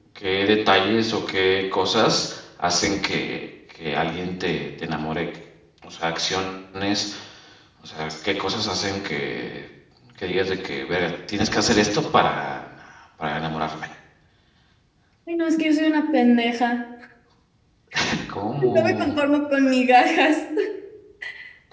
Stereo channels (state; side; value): identical; both; correlation 1.00